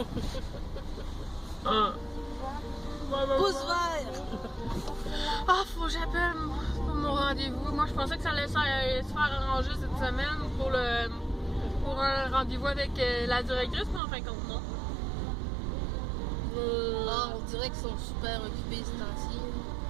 Pouce vert! Ah, faut que j'appelle pour mon rendez-vous. Moi, je pensais que ça allait se faire arranger cette semaine pour un rendez-vous avec la directrice, mais en fin de compte, non. On dirait qu'ils sont super occupés ce temps-ci.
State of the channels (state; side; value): drops out; left; at 14.0 s